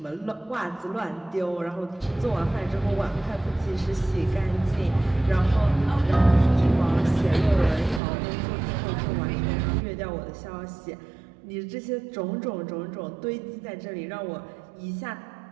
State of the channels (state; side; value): drops out; left; at 8.0 s